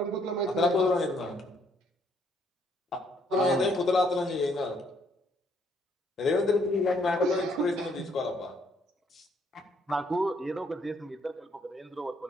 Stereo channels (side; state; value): both; normal; correlation 0.68